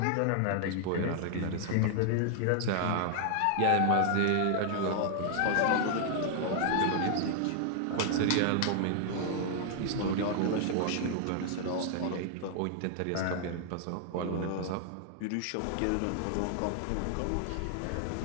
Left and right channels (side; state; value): both; different; correlation 0.00